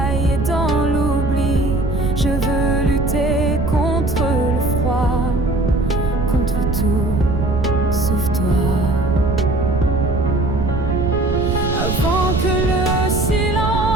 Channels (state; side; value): noise; right; rumble, 2 dB below the sound